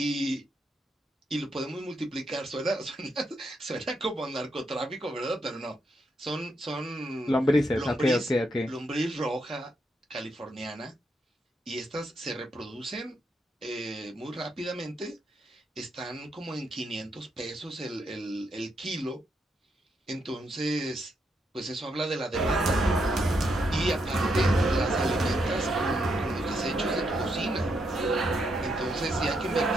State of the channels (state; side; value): normal; both; correlation 0.79